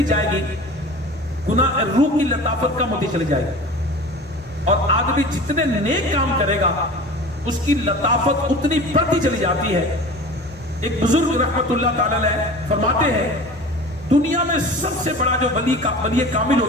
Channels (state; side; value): normal; both; correlation 0.38